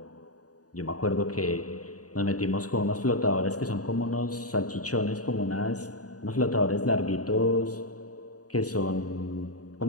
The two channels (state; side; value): late; right; 0.67 ms